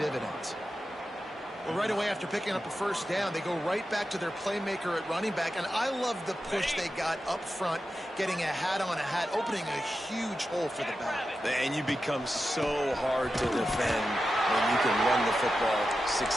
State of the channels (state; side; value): normal; both; correlation 0.91